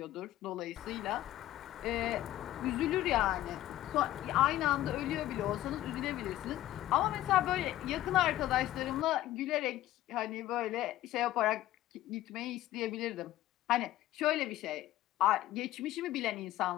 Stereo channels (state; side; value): quieter; right; 14.5 dB